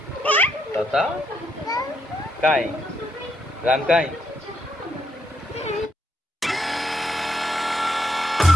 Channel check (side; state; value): both; normal; correlation 0.77